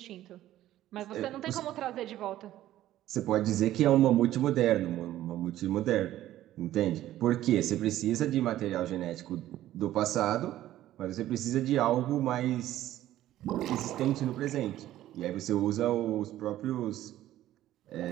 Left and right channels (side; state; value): left; quieter; 13.7 dB